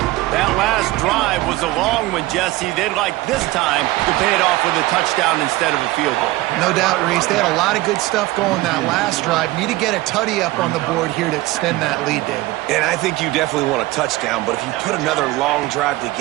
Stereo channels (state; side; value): quieter; left; 18.7 dB